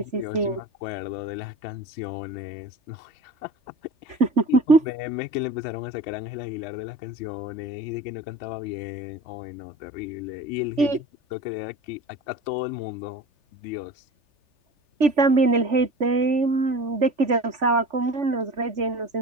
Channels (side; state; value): left; late; 3.4 ms